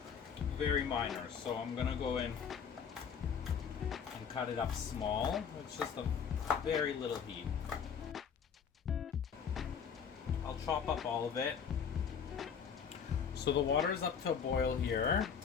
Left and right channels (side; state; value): right; quieter; 7.0 dB